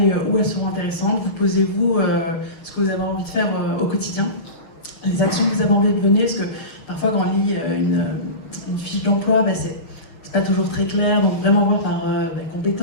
où elles seront intéressantes. Vous posez-vous ce que vous avez envie de faire au quotidien, les actions que vous avez envie de mener, parce que parfois quand on lit une fiche d'emploi, c'est pas toujours très clair, donc vraiment voir par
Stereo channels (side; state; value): right; late; 6.4 ms